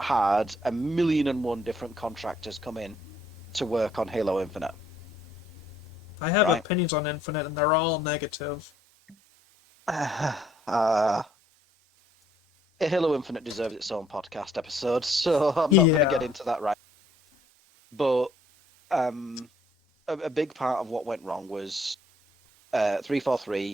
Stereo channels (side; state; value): both; normal; correlation 0.65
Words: had a million and one different contractors come in to work on Halo Infinite, I have right? opinions on Infinite, and they're all negative. uh, Halo Infinite deserves its own podcast episode, so I'm not going to get Yeah. into that right. But um, a big part of what went wrong was